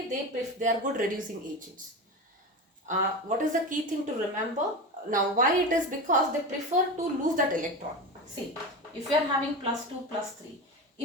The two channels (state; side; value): normal; both; correlation 0.24